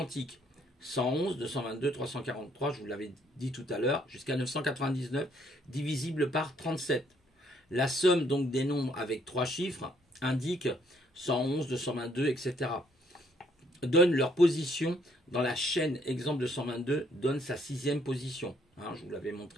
111, 222, 343, je vous l'avais dit tout à l'heure, jusqu'à 999, divisible par 37. La somme donc des nombres avec 3 chiffres indique 111, 222, etc. Donne leur position dans la chaîne. Exemple de 122 donne sa 6e position. Je vous l'avais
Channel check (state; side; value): normal; both; correlation 0.67